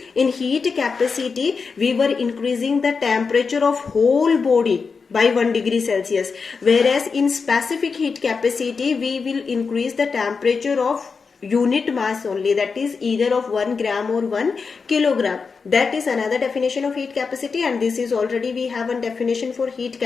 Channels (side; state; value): right; quieter; 5.1 dB